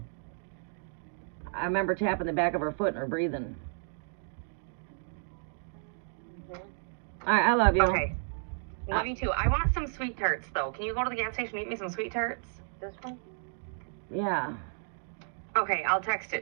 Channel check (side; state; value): left; silent; digital silence